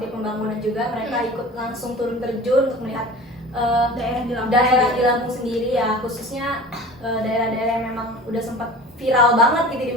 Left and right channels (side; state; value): both; normal; correlation 0.39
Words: Pembangunan juga, mereka ikut langsung turun terjun untuk melihat daerah di Lampung sendiri ya, khususnya daerah-daerah yang memang udah sempat viral banget gitu di